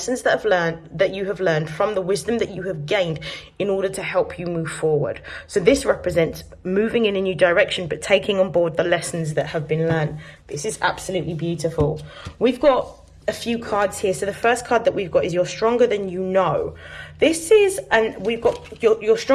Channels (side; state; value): both; identical; correlation 1.00